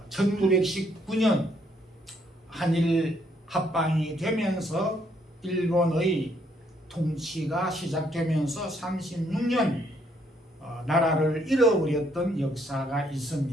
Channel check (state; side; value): normal; both; correlation 0.70